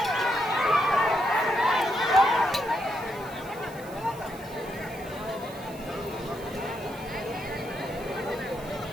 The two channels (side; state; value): right; noise; hiss, 20 dB below the sound